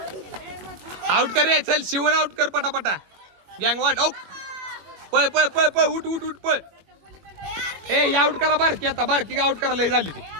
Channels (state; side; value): late; left; 22 ms